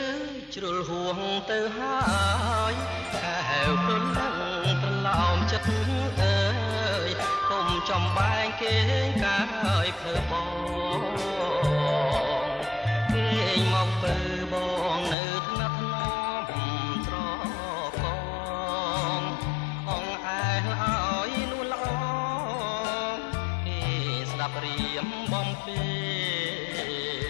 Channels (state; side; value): drops out; right; at 15.2 s